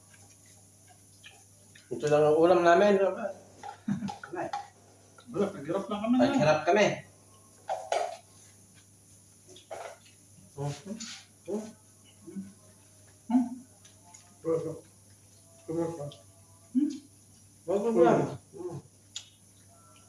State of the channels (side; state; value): both; identical; correlation 1.00